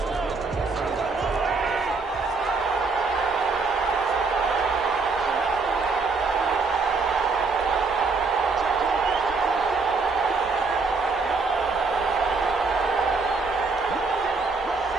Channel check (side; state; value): left; quieter; 4.2 dB